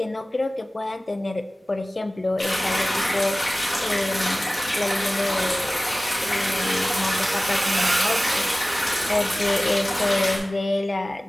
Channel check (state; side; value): normal; both; correlation 0.97